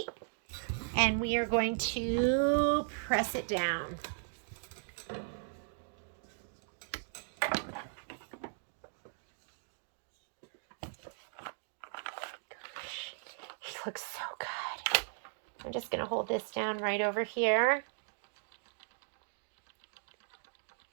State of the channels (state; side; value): silent; left; digital silence